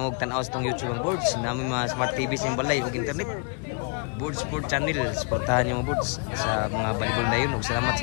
tanaw sa itong YouTube ang boards. Namin mga smart TV sa yung balay o internet. Board Sport Channel, suportahan yung mga boards sa mga volleyball na yun. Salamat sa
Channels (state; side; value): quieter; right; 37.5 dB